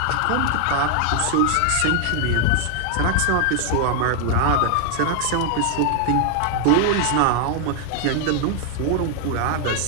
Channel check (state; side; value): different; both; correlation 0.00